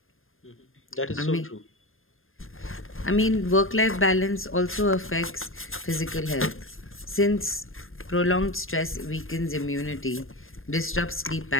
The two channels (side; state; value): right; late; 0.60 ms